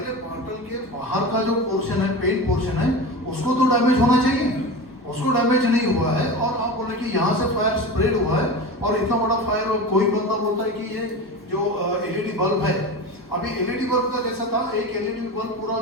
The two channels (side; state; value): both; normal; correlation 0.28